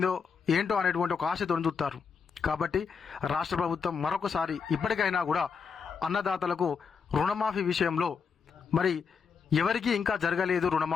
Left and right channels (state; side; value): quieter; right; 6.0 dB